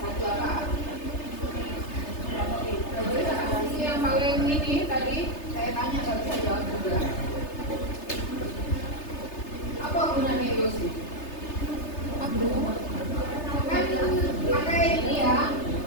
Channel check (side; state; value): right; late; 3.3 ms